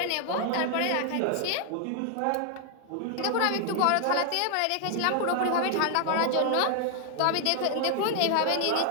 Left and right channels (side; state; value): both; different; correlation 0.00